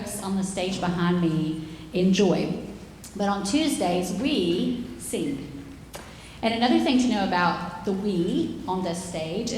on the stage behind me enjoy. But on Tuesdays, we sing. And another thing to know about the we on this stage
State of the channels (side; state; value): both; identical; correlation 1.00